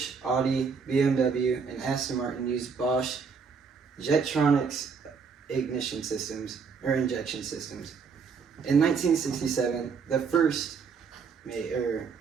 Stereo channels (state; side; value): quieter; left; 5.7 dB